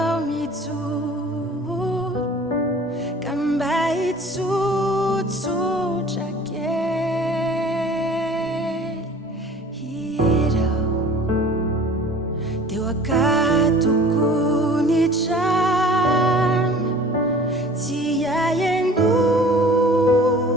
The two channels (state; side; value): normal; both; correlation 0.46